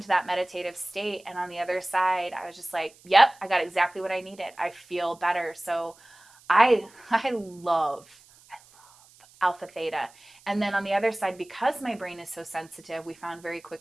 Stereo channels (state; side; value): noise; right; hiss, 27 dB below the sound